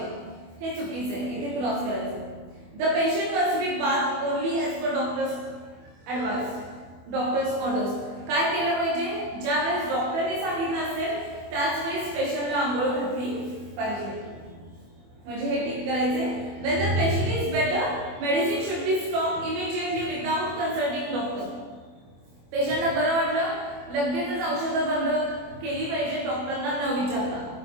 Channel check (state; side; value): late; left; 24 ms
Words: हे चुकीचं आहे, इथे क्रॉस करायचं. The patient must B bath only as per doctors advice, doctors orders. काय केलं पाहिजे, ज्या वेळेस डॉक्टरने सांगितलं असेल त्याच वेळेस पेशंटला आंघोळ घातली पाहिजे, म्हणजे हे टिक करायचे. When the patient is better, medicine should be stopped immediately without consulting doctor. पेशंटला बरं वाटलं, लगेचच औषधं बंद केली पाहिजे डॉक्टरना न विचारता,